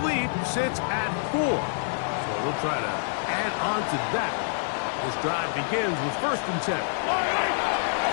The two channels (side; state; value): right; silent; digital silence